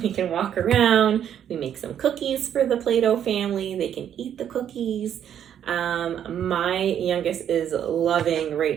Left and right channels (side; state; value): left; quieter; 9.6 dB